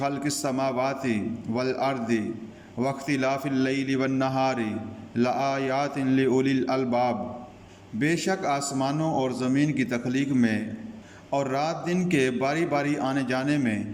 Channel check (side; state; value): both; identical; correlation 1.00